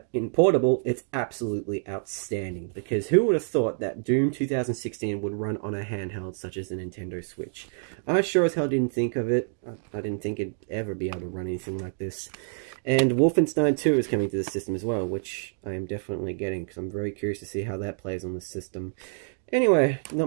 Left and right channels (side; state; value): left; silent; digital silence